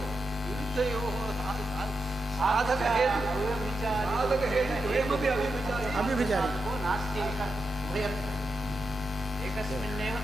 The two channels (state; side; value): normal; both; correlation 0.87